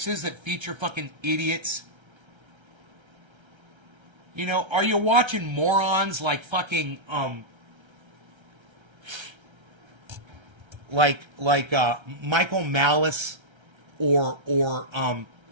that feature fucking idiots? You know, are you watching morons like fucking Michael Malice or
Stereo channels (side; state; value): left; late; 1.3 ms